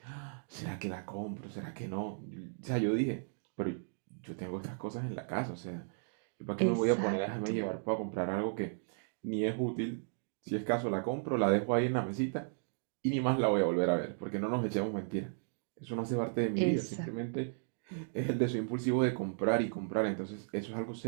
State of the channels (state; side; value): silent; left; digital silence